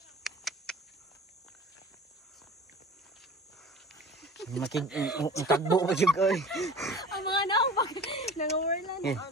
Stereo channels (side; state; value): both; normal; correlation 0.40